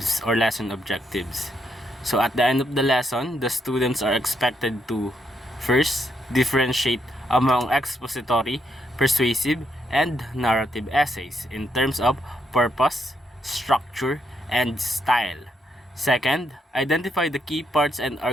or lesson objectives. So at the end of the lesson, the students are expected to first differentiate among expository, persuasive, and narrative essays in terms of purpose, structure, and style. Second, identify the key parts and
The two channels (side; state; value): both; normal; correlation 0.77